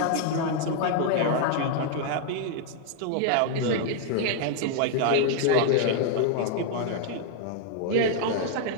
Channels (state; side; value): different; both; correlation 0.00